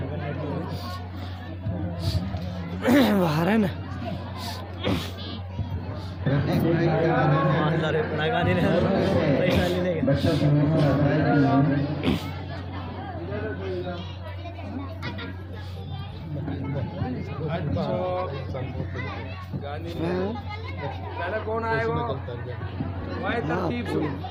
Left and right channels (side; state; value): both; identical; correlation 1.00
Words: बाहर है ना लगा देने पैसा ले लेंगे गांधी पहले कौन आएगा